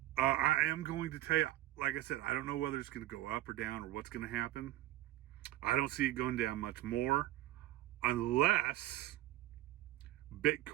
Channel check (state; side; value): quieter; left; 15.3 dB